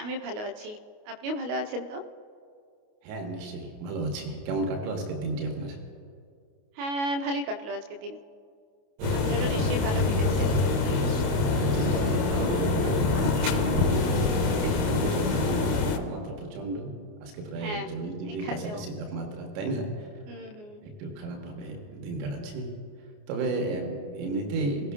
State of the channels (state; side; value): late; left; 28 ms